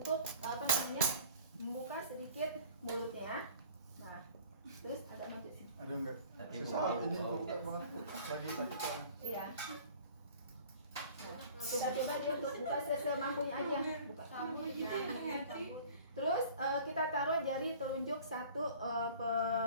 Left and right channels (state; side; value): inverted; both; correlation -0.47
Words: membuka sedikit mulutnya. Nah, terus agak maju sih. Aduh enggak. Hati Susah Bu. ini buka banget. Lagi sakit soalnya. Iya. Nah, kita coba dia untuk buka semampunya aja. Buka. Terus kita taruh jari telunjuk satu